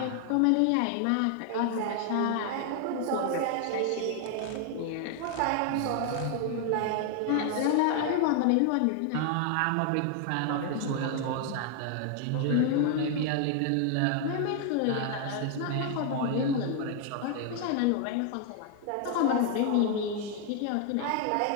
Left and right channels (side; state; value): both; different; correlation 0.00